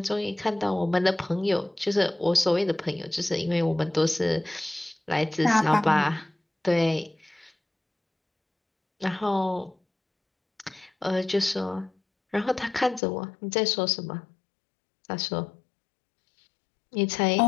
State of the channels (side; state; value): right; drops out; at 13.0 s